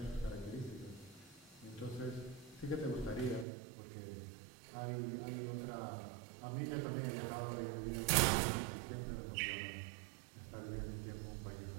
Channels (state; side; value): drops out; left; at 3.5 s